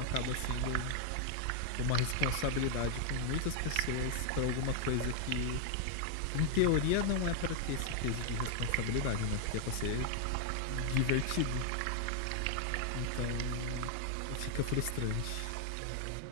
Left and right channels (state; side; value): different; both; correlation 0.00